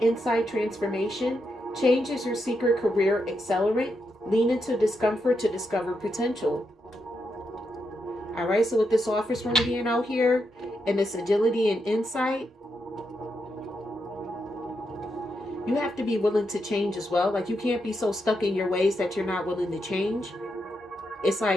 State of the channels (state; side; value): normal; both; correlation 0.83